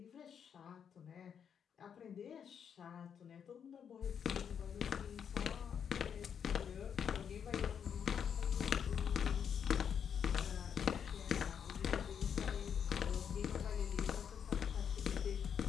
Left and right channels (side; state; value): right; quieter; 7.7 dB